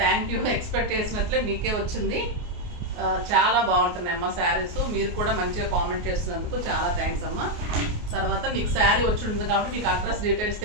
థ్యాంక్ యూ. ఎక్స్పెక్ట్ చేసినట్లే మీకే వచ్చింది. చాలా బాగుంటున్నాయి అమ్మ శారీస్. మీరు కూడా మంచిగా కామెంట్ చేస్తున్నందుకు చాలా థ్యాంక్స్ అమ్మ. తర్వాత మీకు శారీ వచ్చి ఉంటుంది కాబట్టి మీకు అడ్రస్ డీటెయిల్స్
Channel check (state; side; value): late; left; 28 ms